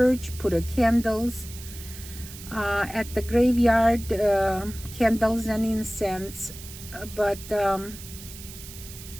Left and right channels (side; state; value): right; noise; hiss, 15 dB below the sound